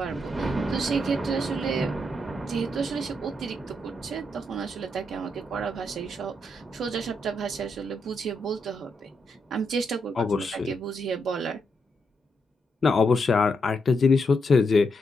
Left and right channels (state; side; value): normal; both; correlation 0.81